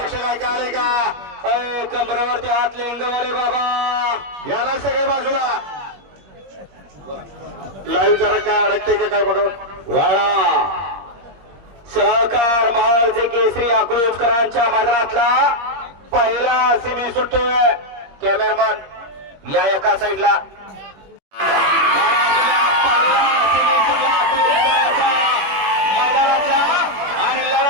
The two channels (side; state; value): left; late; 21 ms